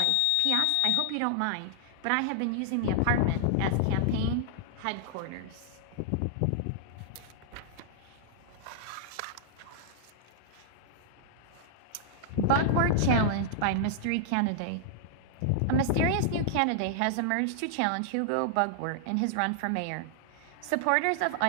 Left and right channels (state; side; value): different; both; correlation -0.01